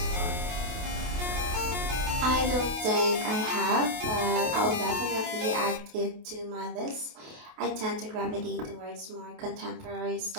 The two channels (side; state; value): left; late; 28 ms